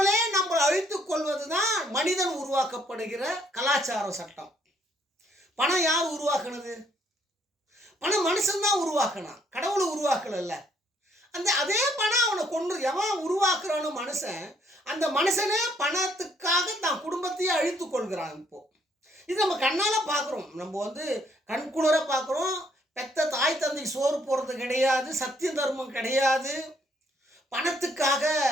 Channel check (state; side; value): normal; both; correlation 0.67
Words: நம்மளை அழித்துக் கொள்வது தான் மனிதன் உருவாக்கப்படுகிற கலாச்சார சட்டம். பணம் யார் உருவாக்குனது? பணம் மனுஷன்தான் உருவாக்கினான், கடவுளை உருவாக்கல. அதே பணம் அவனை கொண்டு எவன் உருவாக்குறான்னு மனுஷன், அந்த மனுஷனே பணத்துக்காக தான் குடும்பத்தையே அழித்து கொள்கிறான். இப்போ இது நம்ம கண்ணால் பார்க்குறோம், நம்ம கண்குளிர பார்க்குறோம். பெத்த தாய் தந்தை சோறு போடுறது கிடையாது, சத்திய தர்மம் கிடையாது, பணத்துக்காக